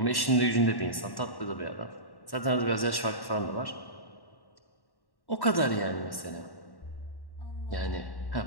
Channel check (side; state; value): right; late; 1.1 ms